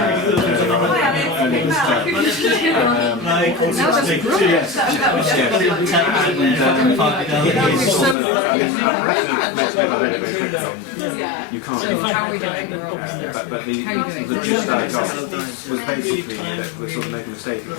earlier this term, yes, you can't. So how are we doing? We're almost there. But the gist I got was basically that we're sort of making a mistake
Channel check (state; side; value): drops out; right; at 8.2 s